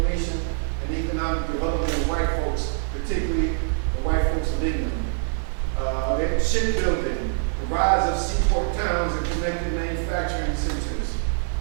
and economic development of white folks, particularly the white folks of England. Shipbuilding, the rise of seaport towns and connected manufacturing centers.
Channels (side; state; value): left; silent; digital silence